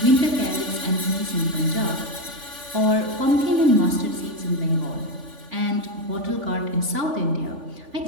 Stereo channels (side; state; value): left; late; 3.5 ms